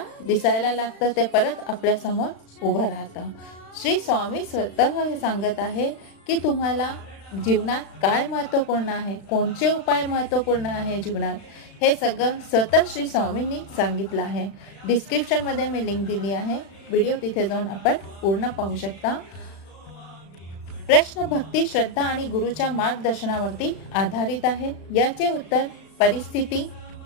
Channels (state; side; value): late; right; 35 ms